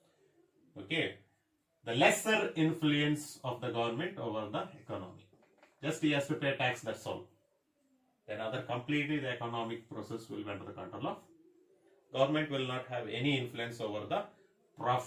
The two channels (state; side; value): identical; both; correlation 1.00